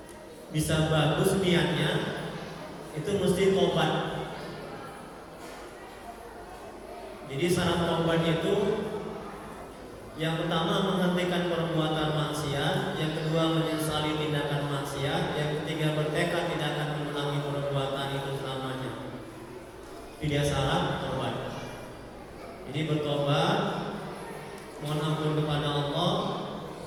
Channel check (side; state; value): both; identical; correlation 1.00